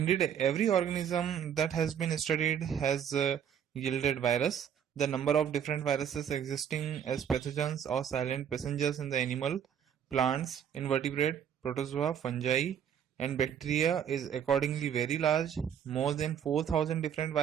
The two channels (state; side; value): quieter; left; 8.7 dB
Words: every organism that has been studied has yielded virus. The number of different viruses existing as pathogens or silent passengers in the animal, plants, invertebrate, protozoa, fungi, and bacteria is accordingly very large, more than 4,000 different